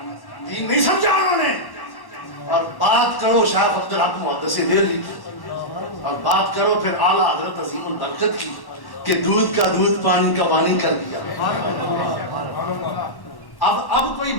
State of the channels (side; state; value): right; late; 1.1 ms